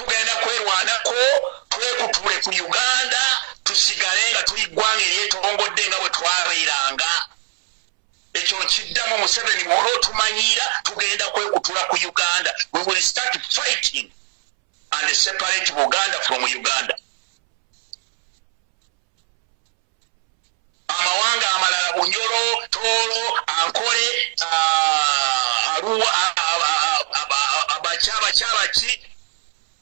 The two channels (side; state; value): left; silent; 66 dB below the other